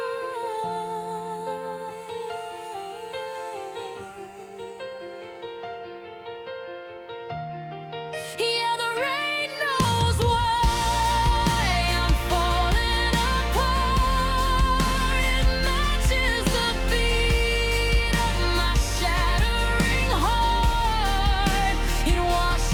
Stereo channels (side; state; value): both; identical; correlation 1.00